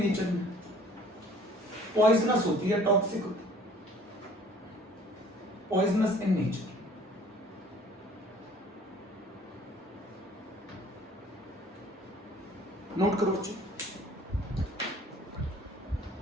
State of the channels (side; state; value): both; normal; correlation 0.53